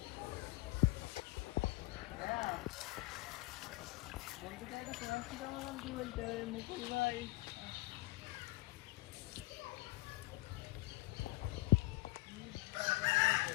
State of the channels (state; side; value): quieter; right; 19.8 dB